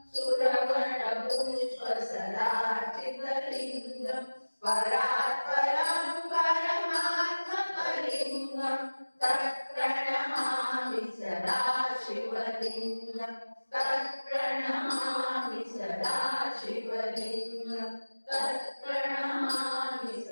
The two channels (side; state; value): both; inverted; correlation -1.00